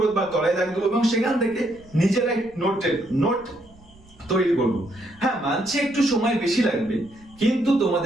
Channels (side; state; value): right; noise; rumble, 26 dB below the sound